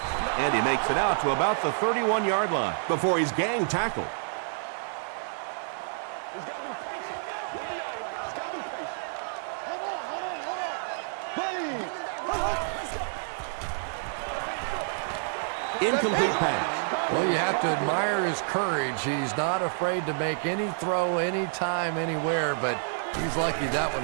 and he makes it out to about the 31-yard line before he's gang tackled. He's got to be patient. He's got to be patient. Hold on. Incomplete pass. Well, you have to admire his courage. He's not afraid to make any throw, anytime, anywhere, but he's lucky that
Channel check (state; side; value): silent; left; digital silence